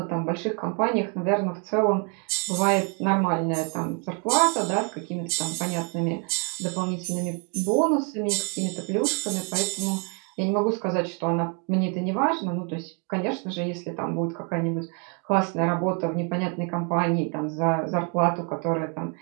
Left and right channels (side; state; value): left; quieter; 37.9 dB